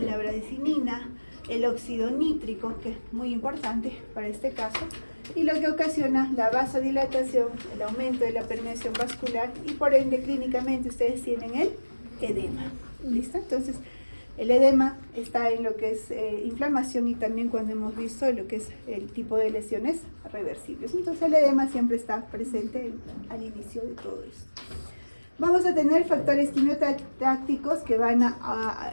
bradicina, el óxido nítrico, que es muy importante para este caso, y lo que ocasiona la vasodilatación, el aumento de la permeación vascular, y por ende clínicamente ustedes tienen el edema. ¿Listo? Entonces, el edema está en lo que es inflamación, y también cuando hemos visto lo que es el tipo de lesiones reversibles. Entonces, el edema siempre está presente al inicio de todo esto. Vamos a tener factores quimiotácticos que van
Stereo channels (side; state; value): both; inverted; correlation -1.00